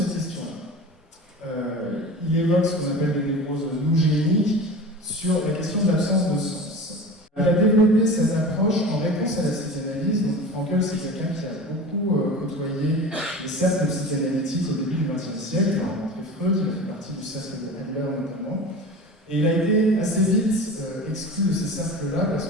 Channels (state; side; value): normal; both; correlation 0.34